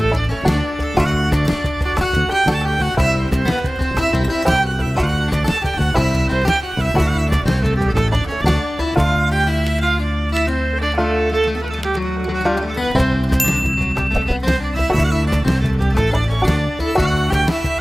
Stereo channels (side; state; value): both; normal; correlation 0.97